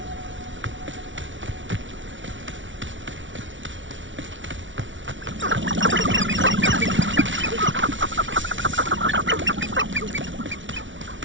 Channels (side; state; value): left; late; 0.56 ms